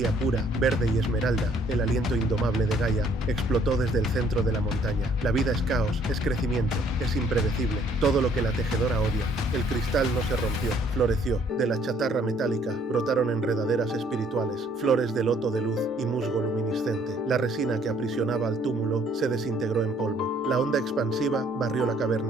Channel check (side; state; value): both; normal; correlation 0.63